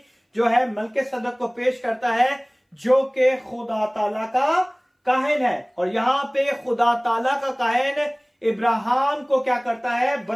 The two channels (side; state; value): both; identical; correlation 1.00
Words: जो है मलकेसदक को पेश करता है, जो कि खुदा ताला का काहिन है। और यहाँ पे खुदा ताला का काहिन इब्राहिम को क्या करता है,